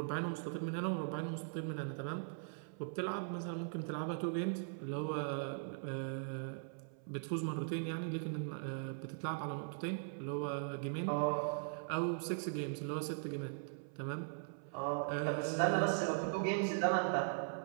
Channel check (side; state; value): left; silent; 51 dB below the other